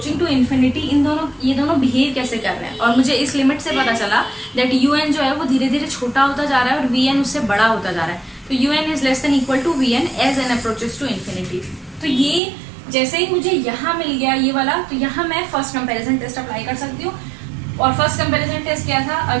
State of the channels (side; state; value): left; drops out; at 12.4 s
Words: to infinity ये दोनों बिहेव कैसे कर रहे हैं. और मुझे इस लिमिट से पता चला दैट un जो है वो धीरे धीरे छोटा होता जा रहा है और vn उससे बड़ा होता जा रहा है. तो un is less than equal to vn as n approaches to infinity. तो ये जैसे ही मुझे यहाँ मिल गया ये वाला तो यहाँ मैं फर्स्ट कंपैरिजन टेस्ट अप्लाई कर सकती हूँ. और फर्स्ट कंपैरिजन टेस्ट क्या था,